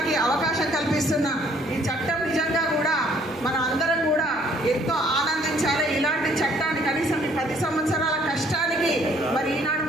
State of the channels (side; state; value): both; normal; correlation 0.61